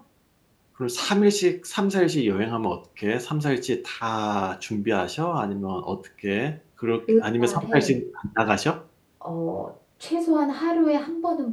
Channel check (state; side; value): identical; both; correlation 1.00